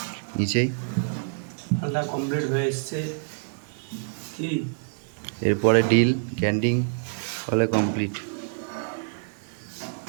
নিচেই, মালটা কমপ্লিট হয়ে এসছে কি এরপরে ডিল ক্যান্ডিং হলে কমপ্লিট।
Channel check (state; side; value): silent; left; 59 dB below the other